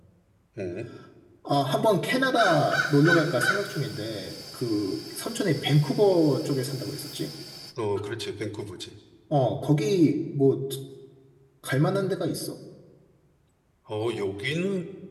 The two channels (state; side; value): identical; both; correlation 1.00